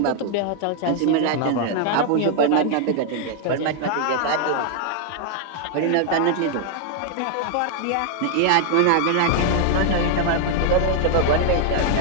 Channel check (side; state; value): both; different; correlation 0.00